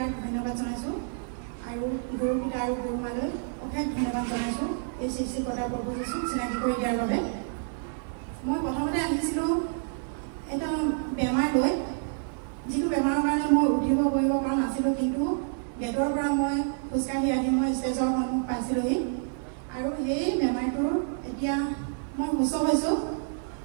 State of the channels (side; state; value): left; silent; 59 dB below the other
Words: ধন্যবাদ জনাইছোঁ আৰু গুৰু পিতা আৰু গুৰু মালৈ অশেষ ধন্যবাদ জনাইছোঁ এই সৃষ্টিকৰ্তা প্ৰভু যীশুক চিনাকি কৰি দিয়াৰ বাবে। মই প্ৰথমতে আহিছিলোঁ এটা বেমাৰ লৈ, যিটো বেমাৰৰ কাৰণে মই উঠিব কৰিব পৰা নাছিলোঁ, কিন্তু গেটৰ পৰা মই খোজকাঢ়ি আহি মই ষ্টেজৰ সন্মুখ পাইছিলোঁহি আৰু সেই বেমাৰটোৰ এতিয়া মই সুস্থ হৈছোঁ।